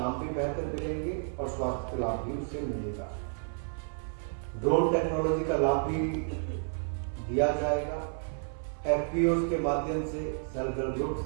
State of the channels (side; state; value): left; silent; 57 dB below the other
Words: भी बेहतर मिलेंगे और स्वास्थ्य का लाभ भी उससे मिलेगा। ड्रोन टेक्नोलॉजी का लाभ भी दिया जाएगा। एफपीओस के माध्यम से, सेल्फ हेल्प